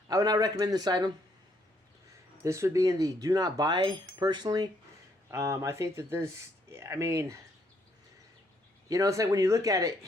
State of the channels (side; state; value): both; normal; correlation 0.71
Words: would not recommend this item. This would be in the do not buy, personally. I think that this, I mean, you know, it's like when you look at it,